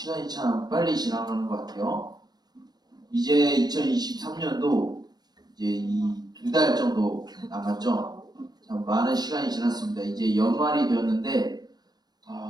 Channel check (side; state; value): left; late; 0.20 ms